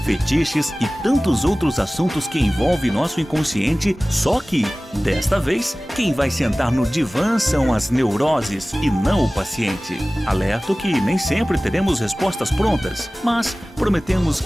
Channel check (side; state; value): both; normal; correlation 0.98